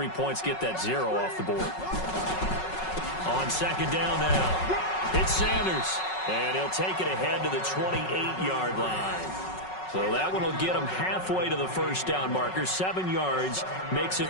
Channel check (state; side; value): late; right; 5.4 ms